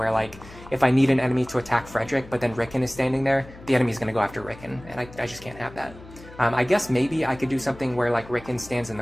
like, if I need an enemy to attack Frederick, but then Ricken is standing there, the enemy's going to go after Ricken, and I just can't have that. I guess maybe I could do something where, like, Ricken stands in the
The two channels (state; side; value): noise; left; hum, 19 dB below the sound